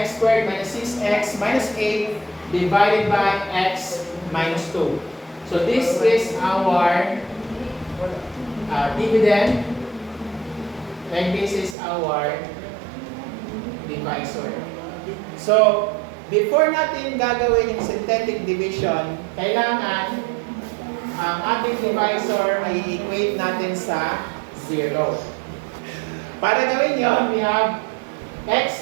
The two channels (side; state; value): left; drops out; at 11.8 s